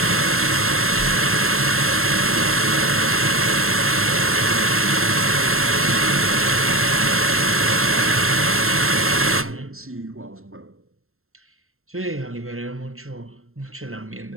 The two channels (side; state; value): left; late; 0.62 ms